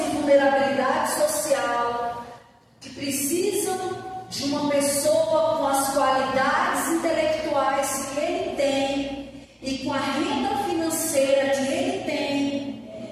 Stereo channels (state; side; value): identical; both; correlation 1.00